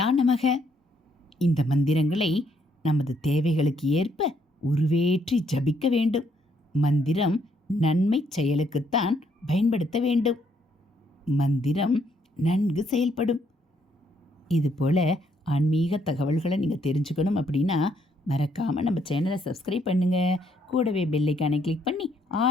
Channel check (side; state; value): both; normal; correlation 0.70